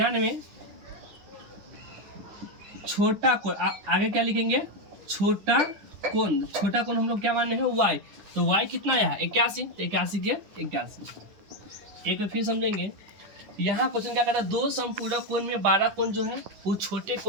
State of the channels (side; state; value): left; late; 10 ms